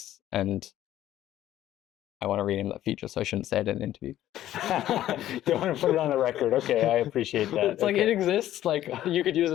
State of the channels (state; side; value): quieter; right; 13.0 dB